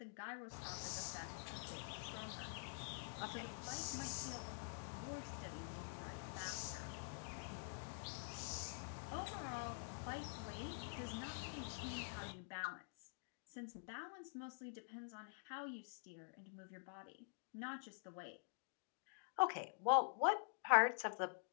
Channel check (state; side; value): silent; right; digital silence